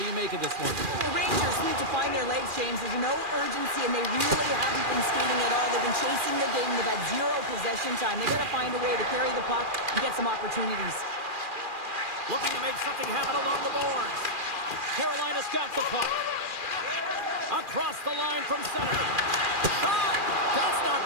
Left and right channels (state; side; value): late; left; 2.4 ms